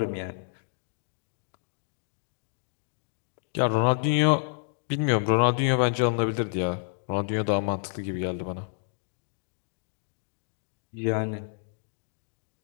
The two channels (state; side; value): silent; right; digital silence